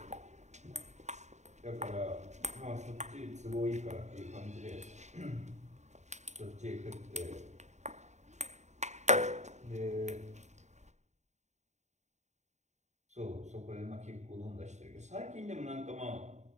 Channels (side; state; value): left; late; 0.34 ms